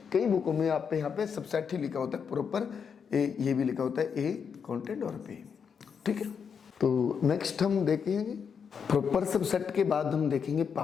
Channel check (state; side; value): quieter; right; 6.6 dB